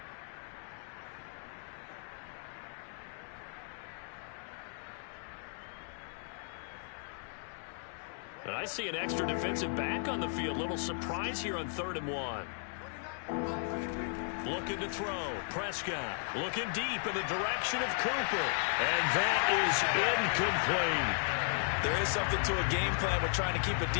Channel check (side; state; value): right; silent; 54 dB below the other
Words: And I see an extra defensive back on the field. Little surprise here on 3rd and 1. Looking to throw. Prescott looking deep in the direction of Cooper. And that is incomplete. There is something to a game plan with trying to keep a